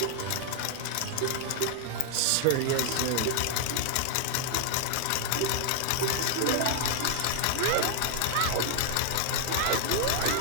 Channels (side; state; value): both; different; correlation -0.01